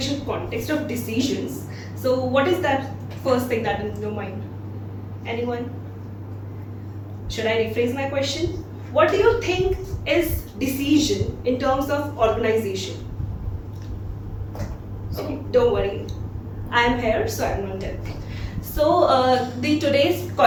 context of decisions? So what is that first thing that is in your mind? Anyone? Should I rephrase my question? What do you think is decision in terms of organization? Okay, don't worry. I am here, so I am not dead. So, the today's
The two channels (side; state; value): both; identical; correlation 1.00